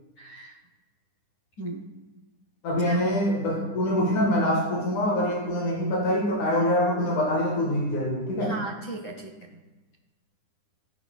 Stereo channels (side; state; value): right; late; 9.9 ms